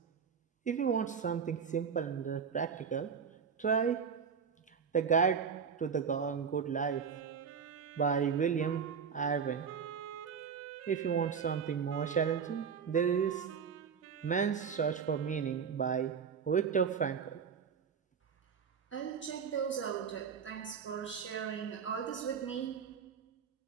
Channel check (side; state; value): left; quieter; 6.7 dB